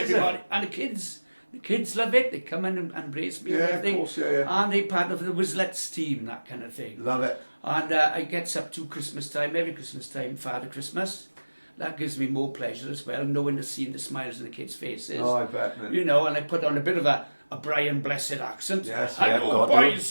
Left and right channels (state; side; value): inverted; both; correlation -1.00